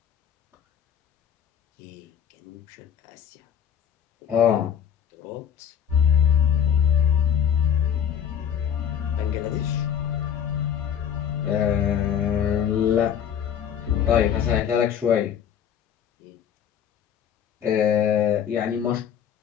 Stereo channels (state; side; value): quieter; right; 8.7 dB